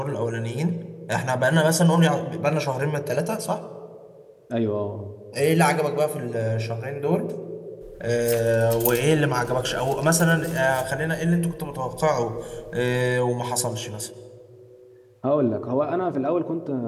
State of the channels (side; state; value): both; identical; correlation 1.00